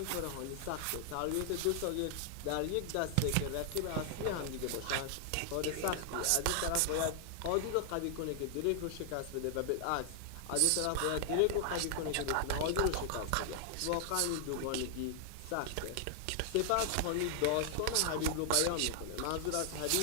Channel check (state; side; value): different; both; correlation 0.00